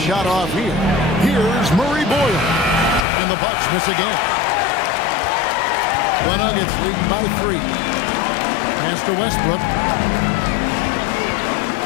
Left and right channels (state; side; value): drops out; right; at 3.1 s